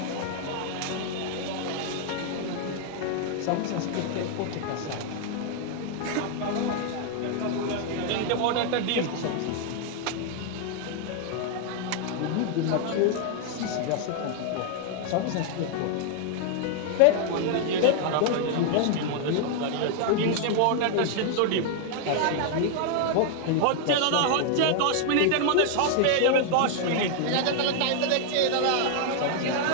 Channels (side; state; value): both; different; correlation 0.00